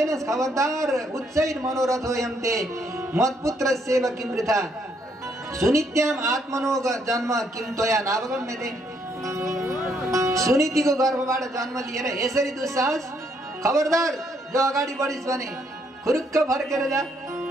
खबरदार, उच्चैर मनोरथ हो यन्ते मत्पुत्र सेव किम वृथा सुनित्याम आत्मनो जन्म किम त्वया नावगम्यते। सुनीतिको गर्भबाट जन्म लिएर यसरी दुस्साहस? खबरदार, जो अगाडि बढिस् भने खुरुक्क फर्केर जा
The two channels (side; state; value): both; normal; correlation 0.71